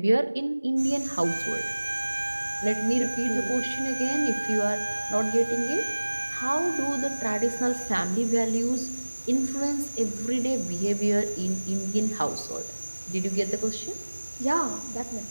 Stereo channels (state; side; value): inverted; both; correlation -1.00